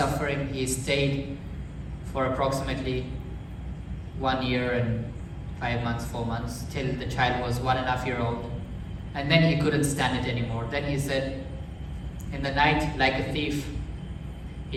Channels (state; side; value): identical; both; correlation 1.00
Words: he stayed for approximately 1 year and 5 months, 4 months, till the child was 1.5 years old. And then he couldn't stand it anymore. Then he said, in the night, like a thief, he